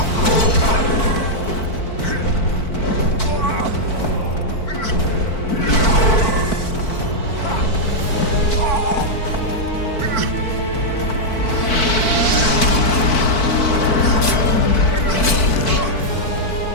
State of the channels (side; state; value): right; late; 4.5 ms